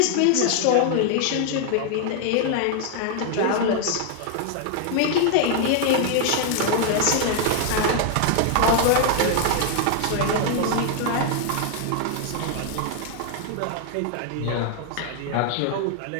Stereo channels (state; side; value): different; both; correlation 0.00